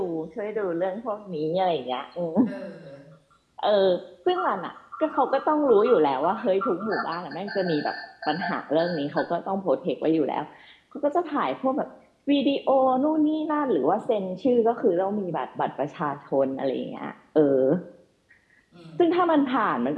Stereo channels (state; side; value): identical; both; correlation 1.00